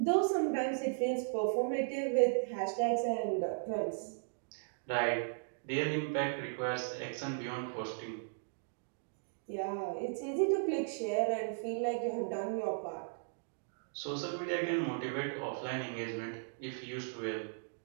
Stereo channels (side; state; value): left; silent; digital silence